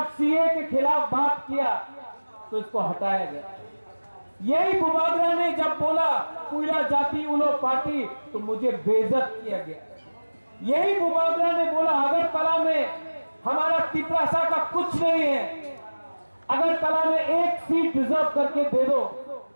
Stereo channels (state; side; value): inverted; both; correlation -1.00